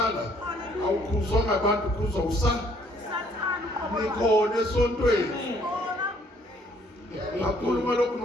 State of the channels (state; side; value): normal; both; correlation 0.63